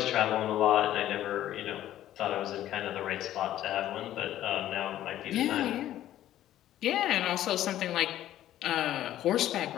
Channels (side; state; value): right; quieter; 12.8 dB